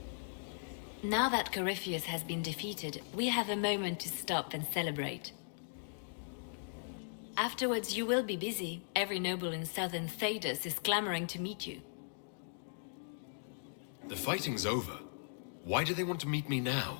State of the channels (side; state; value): right; silent; digital silence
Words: Now that Corypheus has been defeated, we have a moment to stop and celebrate. Afterwards, you will be busy. Every noble in southern Thedas is clamoring to meet you. The fighting's over. Why do they want to meet me